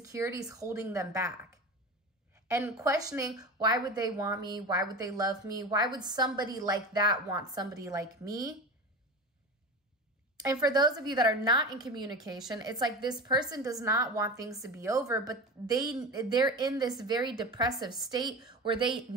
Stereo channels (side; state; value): both; normal; correlation 0.28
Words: holding them back and questioning, why would they want me? Why would they love me? Why would somebody like that want somebody like me? And for those of you that are not in communication, it's like this person does not want things to be over, but they're in this very depressive state where they